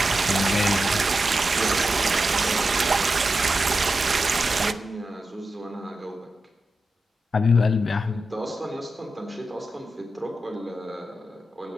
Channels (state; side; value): normal; both; correlation 0.90